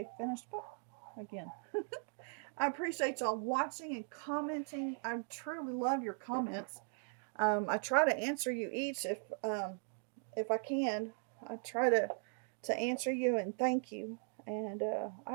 finished book again. I appreciate y'all watching and commenting. I truly love your comments. I try to answer you each if I can. I try to answer you and thank you. And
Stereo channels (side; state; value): left; silent; 52 dB below the other